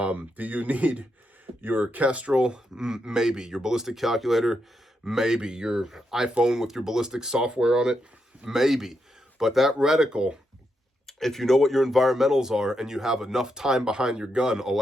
you need your Kestrel? Maybe. Your ballistic calculator? Maybe. Your iPhone with your ballistic software on it? Maybe. But that reticle, if you know what your environmentals are and you have enough time behind your gun,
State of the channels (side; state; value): both; normal; correlation 0.82